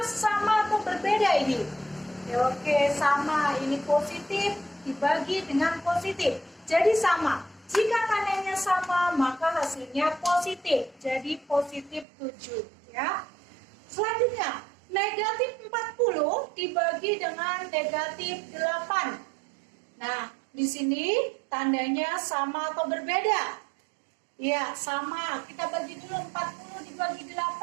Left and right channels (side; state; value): left; drops out; at 12.1 s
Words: sama atau berbeda ini? Ya, oke, sama. Ini positif dibagi dengan positif. Jadi sama. Jika tandanya sama, maka hasilnya positif. Jadi positif 7. Ya. Selanjutnya, Negatif 40 dibagi dengan negatif 8. Nah, di sini tandanya sama atau berbeda? Ya, sama. Kita bagi dulu 40 dibagi